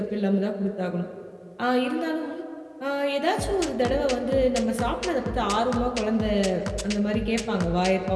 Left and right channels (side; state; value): both; identical; correlation 1.00